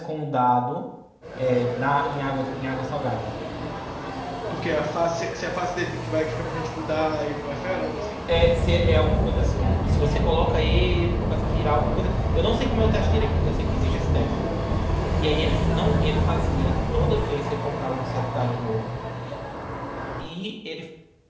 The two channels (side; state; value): both; identical; correlation 1.00